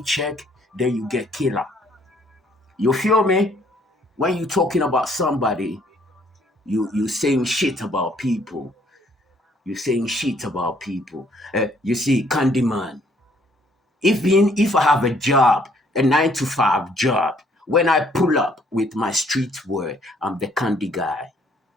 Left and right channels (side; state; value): both; normal; correlation 0.65